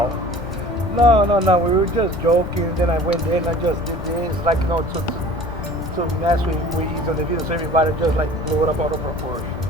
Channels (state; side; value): normal; both; correlation 0.44